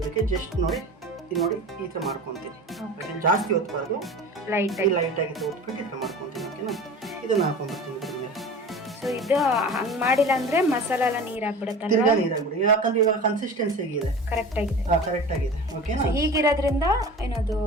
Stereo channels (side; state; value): both; normal; correlation 0.36